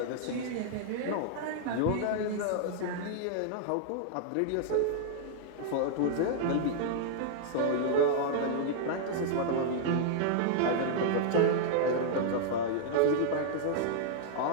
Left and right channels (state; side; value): different; both; correlation -0.01